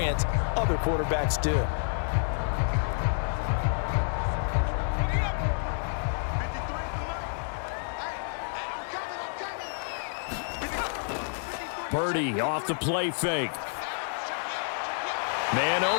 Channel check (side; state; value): right; silent; digital silence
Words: other quarterbacks do. Purdy off the play fake. Man